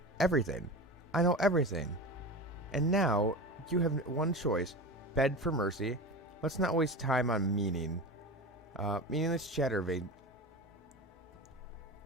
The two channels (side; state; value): both; normal; correlation 0.29